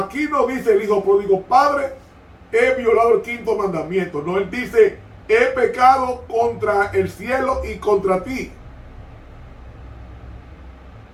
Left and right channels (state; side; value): identical; both; correlation 1.00